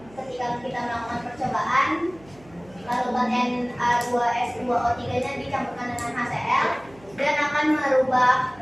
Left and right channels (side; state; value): right; noise; hum, 25 dB below the sound